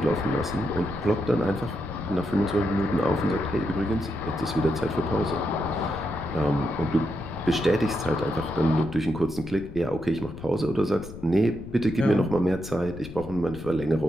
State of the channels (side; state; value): left; noise; rumble, 13 dB below the sound